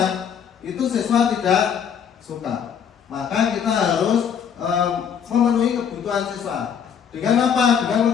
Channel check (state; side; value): quieter; right; 7.8 dB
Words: itu siswa tidak suka. Maka kita harus memenuhi kebutuhan siswa. Dengan apa?